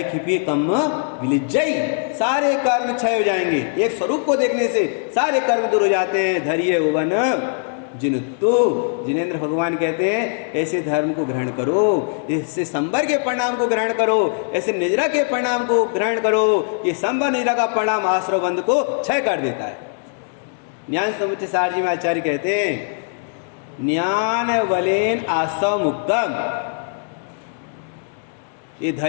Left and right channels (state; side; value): silent; right; 65 dB below the other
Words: खिपी कम विलिज्जई, सारे कर्म क्षय हो जाएंगे। एक स्वरूप को देखने से सारे कर्म दूर हो जाते हैं। धैर्य उवन जिनुत्तु, जिनेन्द्र भगवान कहते हैं ऐसे धर्म को ग्रहण करो, ऐसे संबर के परिणाम को ग्रहण करो, ऐसे निजरा के परिणाम को ग्रहण करो। ये संबर निजरा का परिणाम आश्रव बंध को क्षय कर देता है। ज्ञान समुच्चय सार जी में आचार्य कहते हैं ज्ञान बलेन आसव मुक्तम। ये